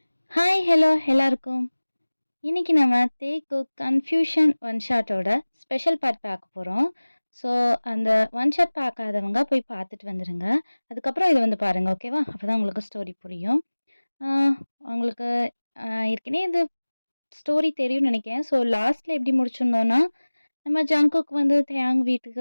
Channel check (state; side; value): inverted; both; correlation -1.00